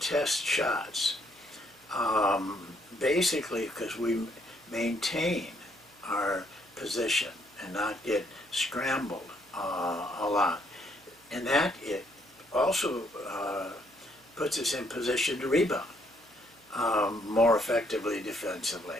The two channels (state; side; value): noise; right; hum, 30 dB below the sound